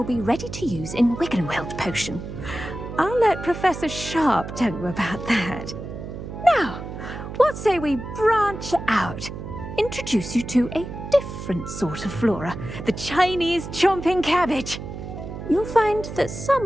be ready to use in Wiggenweld potion. I'll let Professor Sharp tell you about that. Now, what say we branch out? Introduce you to a different sort of flora, the Chinese chomping cabbage. You'll find that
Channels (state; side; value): noise; right; hum, 9 dB below the sound